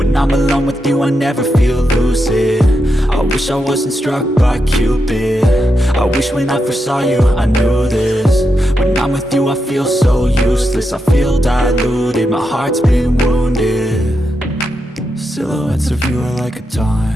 I'm alone with you I never feel lucid. I wish I wasn't struck by Cupid. I wish when I first saw you I knew this. When I'm with you I feel so useless, I feel diluted, my heart's been wounded. Silhouettes of you are like a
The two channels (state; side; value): normal; both; correlation 0.85